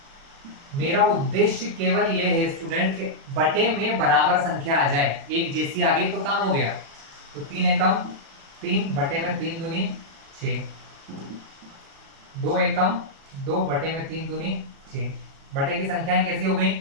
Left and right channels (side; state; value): left; late; 36 ms